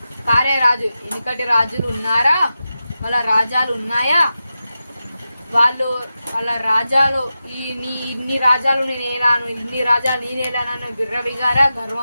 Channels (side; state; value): both; inverted; correlation -0.91